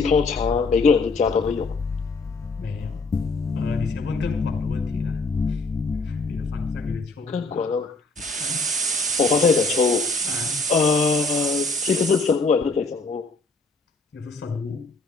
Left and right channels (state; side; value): quieter; right; 3.5 dB